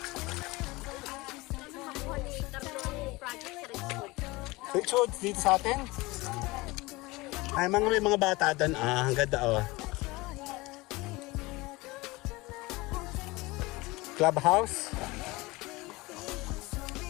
Richard, dito sa atin? Ay, may mga bata doon. Ah, ang ganda oh. Clubhouse.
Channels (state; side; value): quieter; right; 22.2 dB